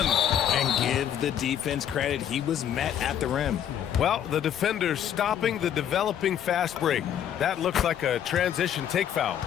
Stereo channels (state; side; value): quieter; right; 9.8 dB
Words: And give the defense credit. He was met at the rim. Well, the defender stopping the developing fast break. That looks like a transition take foul.